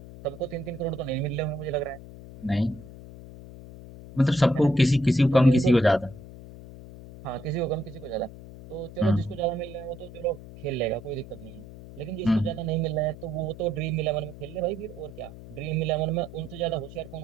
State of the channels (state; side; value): noise; left; hum, 15 dB below the sound